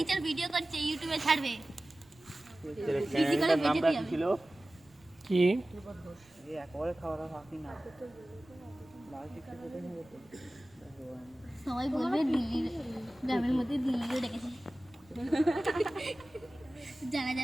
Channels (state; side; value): noise; right; rumble, 29 dB below the sound